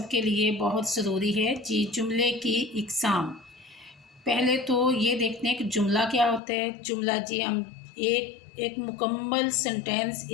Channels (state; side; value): drops out; right; at 6.4 s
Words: के लिए बहुत ज़रूरी है जी। जुमले की इक़साम, पहले तो ये देखते हैं कि जुमला क्या होता है। जुमला जी हम एक मुकम्मल सेंटेंस,